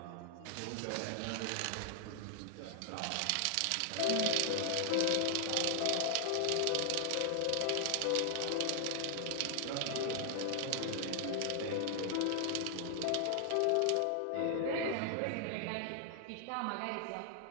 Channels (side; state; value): both; different; correlation 0.00